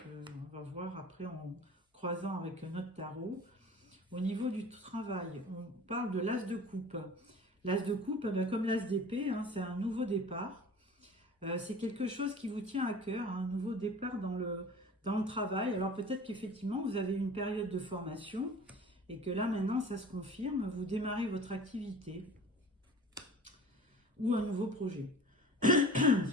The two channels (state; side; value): normal; both; correlation 0.41